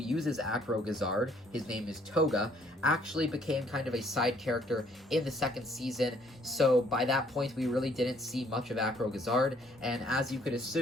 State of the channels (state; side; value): normal; both; correlation 0.64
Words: Acro Gazard, his name is Tohga, actually became kind of a side character in the second season, so by that point we really didn't see much of Acro Gazard, and as you could